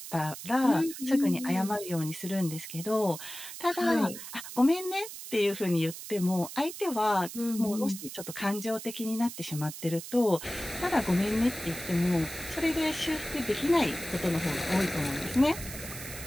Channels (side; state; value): right; noise; hiss, 11 dB below the sound